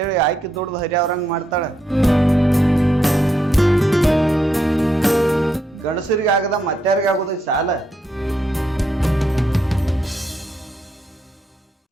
ಆಯ್ಕೆ ದುಡ್ದು ಹರಿ ಅವ್ರಂಗ್ ಮಾಡ್ತಾಳ. ಗಂಡಸರಿಗೆ ಆಗದ ಮತ್ತಾರಿಗೆ ಆಗುದೈತಿ ಸಾಲ.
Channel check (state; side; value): normal; both; correlation 0.79